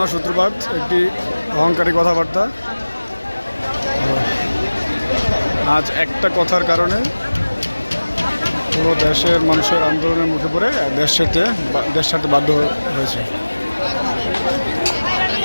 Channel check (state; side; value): inverted; both; correlation -1.00